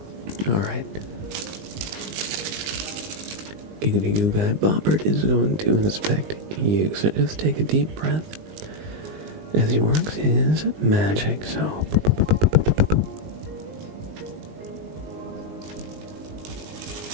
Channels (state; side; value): late; left; 19 ms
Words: Alright. Giggity Goo Guy Bobbert is going to inspect you, so just take a deep breath as he works his magic, so...